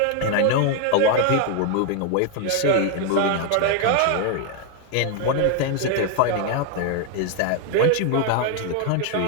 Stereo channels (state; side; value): different; both; correlation 0.00